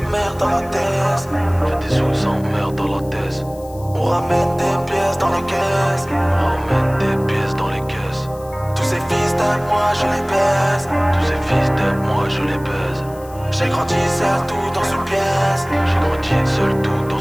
merde dans la thèse. Fais des sous sans merde dans la thèse. On ramène des pièces dans les caisses. On ramène des pièces dans les caisses. Tous ces fils de moi je les baise. Tous ces fils d'aide, moi je les baise. J'ai grandi seul tout dans une pièce. J'ai grandi seul tout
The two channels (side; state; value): left; noise; hiss, 23 dB below the sound